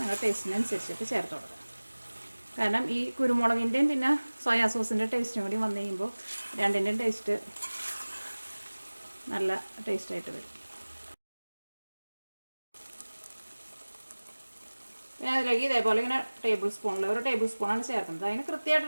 ടേസ്റ്റിനനുസരിച്ചിട്ട് ചേർത്ത് കൊടുക്കുക. കാരണം ഈ കുരുമുളകിൻ്റെയും പിന്നെ സോയാ സോസിൻ്റെ ടേസ്റ്റും കൂടി വന്നു കഴിയുമ്പോൾ രണ്ടിൻ്റെയും ടേസ്റ്റ് നല്ല ടേസ്റ്റായിട്ട് വരും. ഞാൻ അതിലേക്ക് ഇതേപോലെ ഇങ്ങനെ ഒരു ടേബിൾ സ്പൂണാണ് ചേർക്കുന്നത്. അതിന്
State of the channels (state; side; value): inverted; both; correlation -1.00